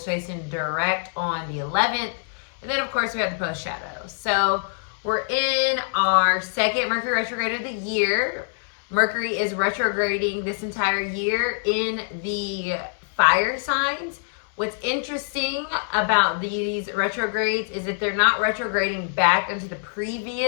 in direct on the 11th. And then, of course, we have the post shadow. So we're in our second Mercury retrograde of the year. Mercury is retrograding this entire year in the fire signs. What's interesting about these retrogrades is that they're not retrograding back into the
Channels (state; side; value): silent; right; 62 dB below the other